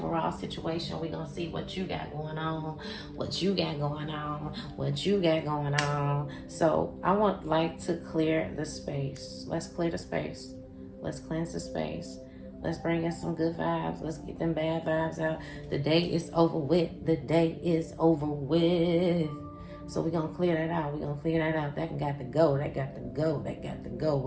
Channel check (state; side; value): identical; both; correlation 1.00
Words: situation. We're gonna see what you got going on, what you got going on, what you got going on. So I want to clear the space. Let's clear the space. Let's cleanse the space. Let's bring in some good vibes. Let's get them bad vibes out. The day is over with. The day is over with. So we're going to clear that out. We're going to clear that out. That got to go. That got to go. That got to go.